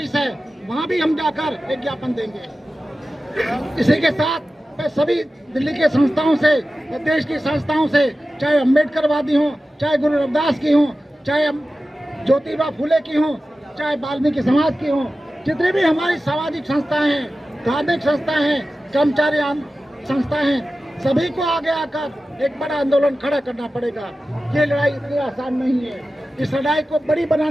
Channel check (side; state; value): both; normal; correlation 0.94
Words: है, वहाँ भी हम जाकर एक ज्ञापन देंगे। इसी के साथ मैं सभी दिल्ली के संस्थाओं से, देश की संस्थाओं से, चाहे अम्बेडकरवादी हों, चाहे गुरु रविदास की हों, चाहे ज्योतिबा फुले की हों, चाहे वाल्मीकि समाज की हों, जितनी भी हमारी सामाजिक संस्थाएं हैं, धार्मिक संस्थाएं हैं, कर्मचारी संस्थाएं हैं, सभी को आगे आकर एक बड़ा आंदोलन खड़ा करना पड़ेगा। ये लड़ाई इतनी आसान नहीं है, इस लड़ाई को बड़ी